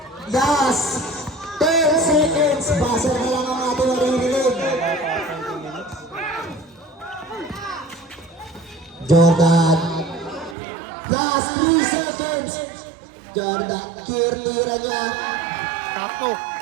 Last 10 seconds. Basa na lang ang ating maririnig. Jordan. Last 3 seconds. Jordan, tira niya. Takto!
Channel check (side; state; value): left; drops out; at 10.6 s